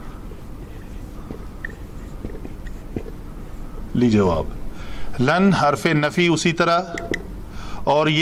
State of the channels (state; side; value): identical; both; correlation 1.00